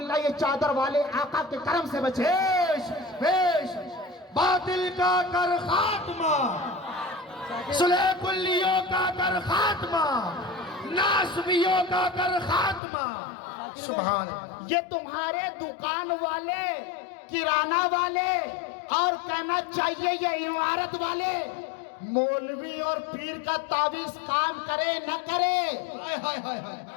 ये चादर वाले आका के करम से बचे। बेश बेश। बातिल का कर खात्मा, सुलह कुल्लियों का कर खात्मा, नासबियों का कर खात्मा। सुभान अल्लाह। ये तुम्हारे दुकान वाले, किराना वाले, और कहना चाहिए ये इमारत वाले, मौलवी और पीर का तावीज काम करे न करे, हाय हाय हाय हाय।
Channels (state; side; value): drops out; right; at 12.8 s